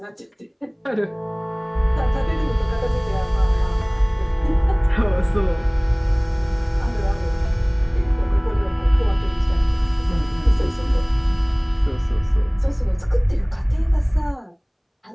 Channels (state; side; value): identical; both; correlation 1.00